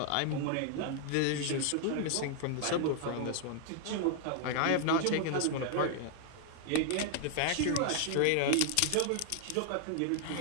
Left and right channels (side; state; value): both; different; correlation 0.00